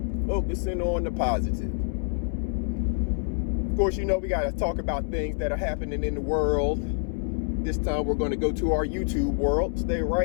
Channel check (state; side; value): silent; right; 60 dB below the other